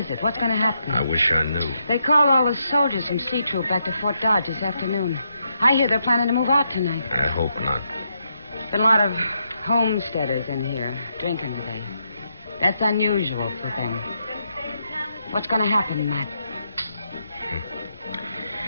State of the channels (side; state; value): both; inverted; correlation -0.80